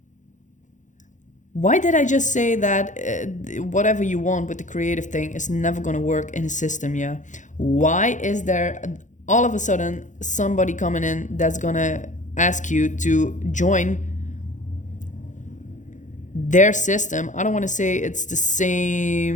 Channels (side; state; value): right; late; 0.36 ms